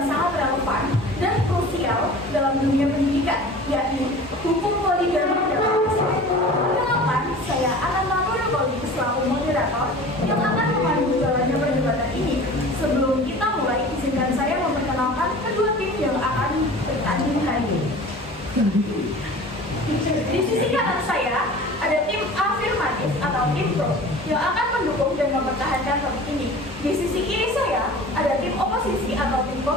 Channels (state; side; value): normal; both; correlation 0.40